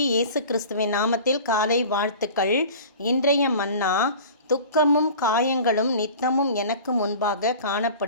இயேசு கிறிஸ்துவின் நாமத்தில் காலை வாழ்த்துக்கள். இன்றைய மன்னா, துக்கமும் காயங்களும் நித்தமும் எனக்கு முன்பாக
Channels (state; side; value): inverted; both; correlation -0.40